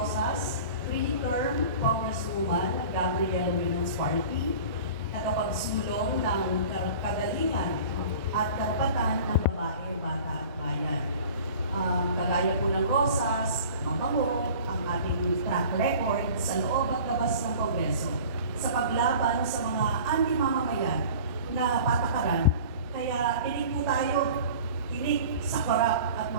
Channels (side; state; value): both; inverted; correlation -0.42